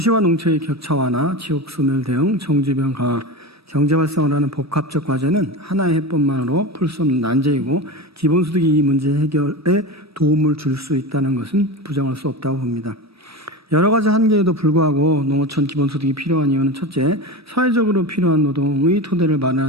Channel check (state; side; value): normal; both; correlation 0.24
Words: 농촌의 격차 완화, 지역 소멸 대응, 정주변 강화, 경제 활성화를 하는 복합적 과제는 하나의 해법만으로 풀 수 없는 난제이고 기본소득이 이 문제 해결에 도움을 줄 수 있다는 것은 부정할 수 없다고 봅니다. 여러 가지 한계에도 불구하고 농어촌 기본소득이 필요한 이유는 첫째, 사회적으로 필요한 노동의 토대를